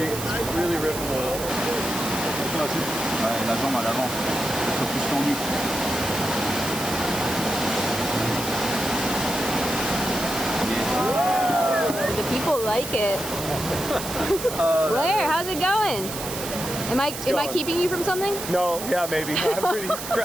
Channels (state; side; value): noise; right; hiss, 8 dB below the sound